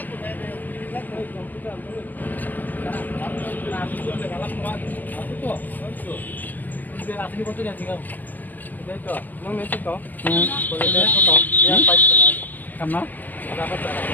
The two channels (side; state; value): right; late; 0.084 ms